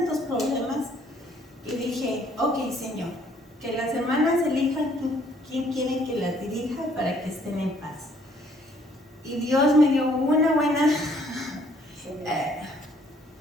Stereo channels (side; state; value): both; normal; correlation 0.63